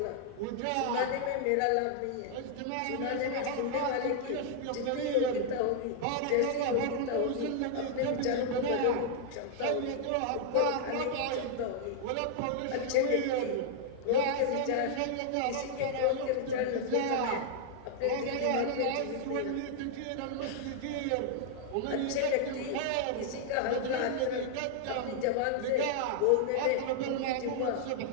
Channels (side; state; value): both; different; correlation -0.01